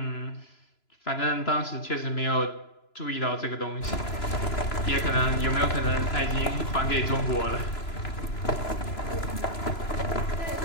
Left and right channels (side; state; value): right; late; 3.0 ms